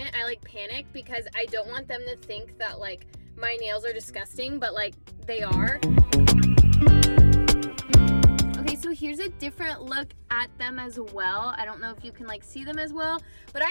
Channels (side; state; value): both; inverted; correlation -1.00